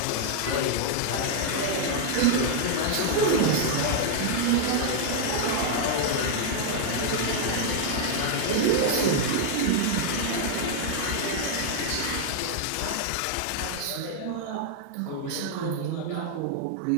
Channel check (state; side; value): different; both; correlation 0.00